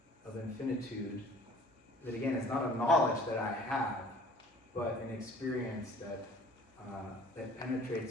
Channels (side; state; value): both; normal; correlation 0.51